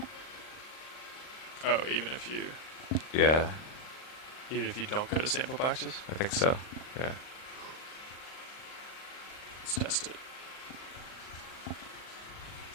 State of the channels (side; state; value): right; late; 39 ms